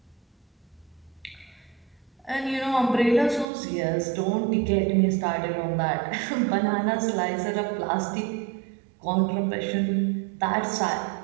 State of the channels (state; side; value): drops out; left; at 3.5 s